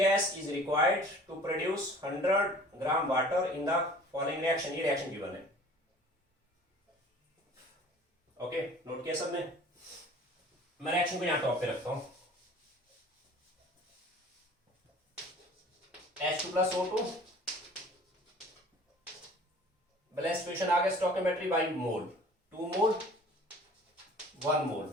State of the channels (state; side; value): normal; both; correlation 0.47